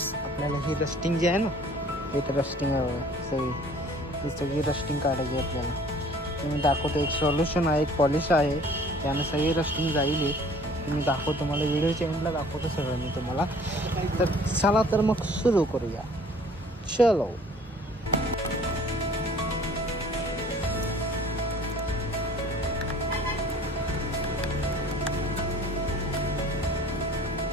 आपल्याला हे रस्टिंग जे आहे ना, एक रस्टिंग आहे सगळी रस्टिंग काढायची आहे आपल्याला. मी दाखवतो. एक सोल्युशन आहे, एक पॉलिश आहे, त्यानं सगळी रस्टिंग जाईल. मी दाखवतो तुम्हाला, व्हिडिओच्या एंडला दाखवतो सगळं मी तुम्हाला. तर चला तर मग सुरू करूया. चलो.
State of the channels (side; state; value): both; normal; correlation 0.51